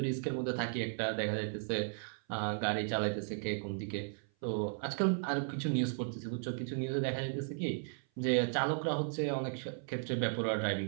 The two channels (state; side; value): silent; left; 54 dB below the other